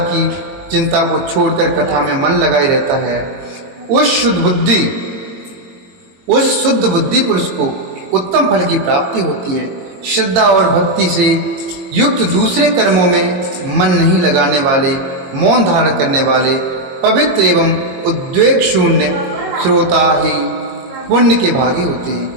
की चिंता को छोड़कर कथा में मन लगाए रहता है, उस शुद्ध बुद्धि पुरुष को उत्तम फल की प्राप्ति होती है। श्रद्धा और भक्ति से युक्त दूसरे कर्मों में मन नहीं लगाने वाले, मौन धारण करने वाले, पवित्र एवं उद्वेग शून्य श्रोता ही पुण्य के भागी होते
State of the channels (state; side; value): late; left; 22 ms